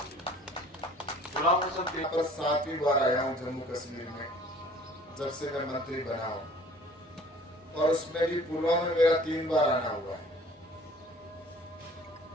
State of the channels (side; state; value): both; normal; correlation 0.51